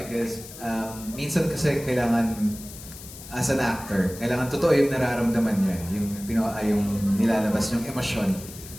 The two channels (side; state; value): left; noise; hiss, 15 dB below the sound